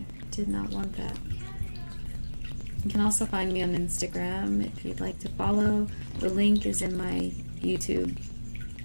did not want that. You can also find me on Instagram if you'd like to follow. The link is in my YouTube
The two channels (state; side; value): inverted; both; correlation -1.00